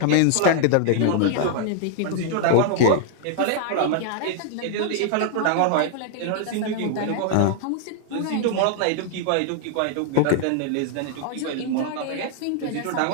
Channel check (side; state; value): both; different; correlation 0.00